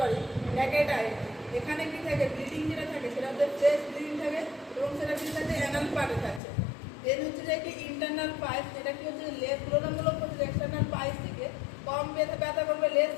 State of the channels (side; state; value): right; drops out; at 6.4 s